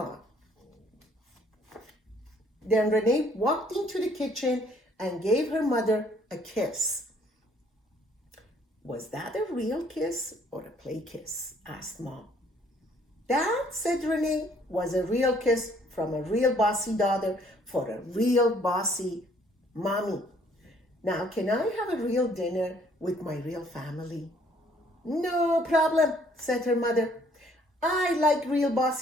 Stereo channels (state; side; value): normal; both; correlation 0.62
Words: Then Renee walked into the kitchen and gave her mother a kiss. "Was that a real kiss or a play kiss?" asked Mom. "That," said Renee, "was a real kiss from a real bossy daughter for a real bossy mommy. Now, can I have a real dinner with my real family?" "No problem," said her mother. "I like real